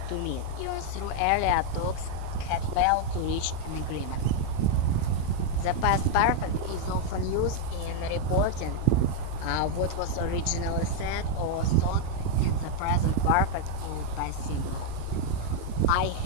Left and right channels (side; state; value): both; different; correlation 0.00